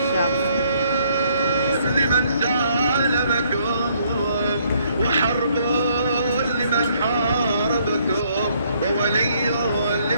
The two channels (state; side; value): inverted; both; correlation -0.67